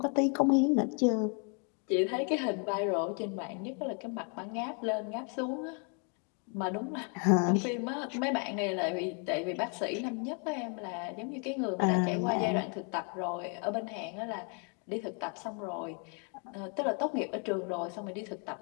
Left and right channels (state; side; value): quieter; right; 38.4 dB